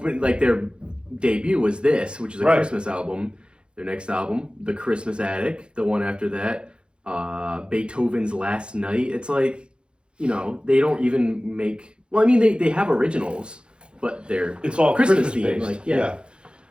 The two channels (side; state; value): left; late; 0.054 ms